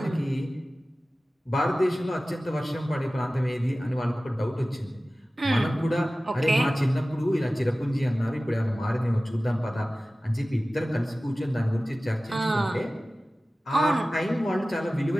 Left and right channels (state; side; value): normal; both; correlation 0.97